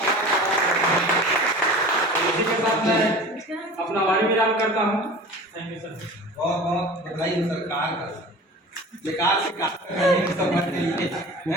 इसी के साथ मैं अपना वारी विराम करता हूँ। Thank you sir. बहुत बहुत बधाई हो सरकार का, बेकार से कार समझ लिए, है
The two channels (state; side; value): normal; both; correlation 0.38